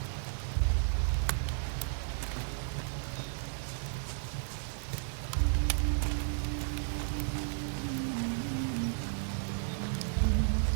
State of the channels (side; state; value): left; silent; 55 dB below the other